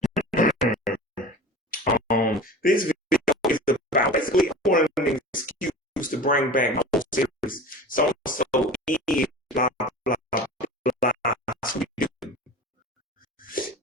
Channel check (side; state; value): both; normal; correlation 0.36